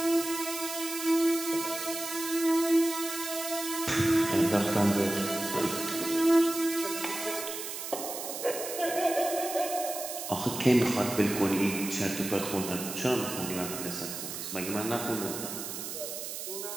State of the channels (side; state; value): right; noise; hiss, 7 dB below the sound